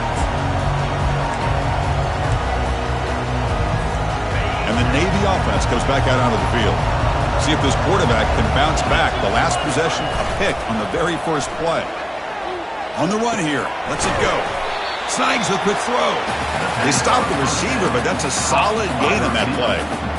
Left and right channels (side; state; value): both; identical; correlation 1.00